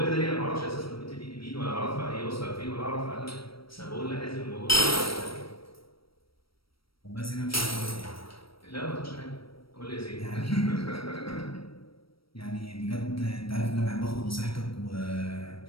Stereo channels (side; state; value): right; late; 0.75 ms